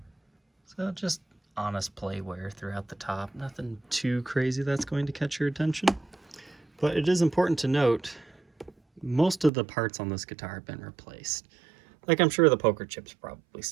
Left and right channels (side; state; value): left; drops out; at 9.5 s